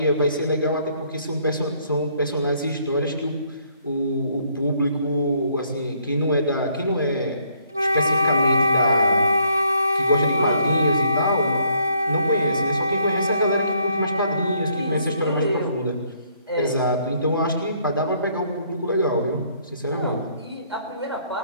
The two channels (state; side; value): inverted; both; correlation -0.68